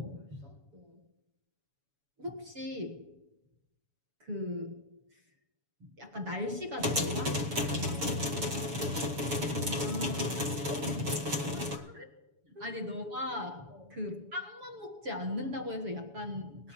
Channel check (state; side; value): late; left; 7.1 ms